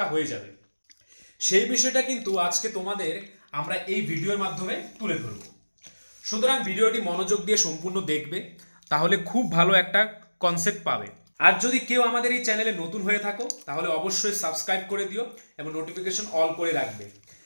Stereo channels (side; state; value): both; inverted; correlation -1.00